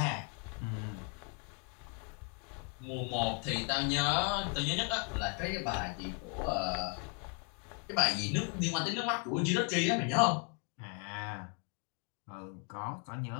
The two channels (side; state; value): right; quieter; 36.8 dB